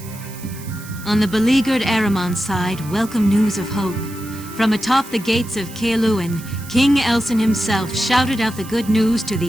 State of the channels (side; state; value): right; noise; hiss, 17 dB below the sound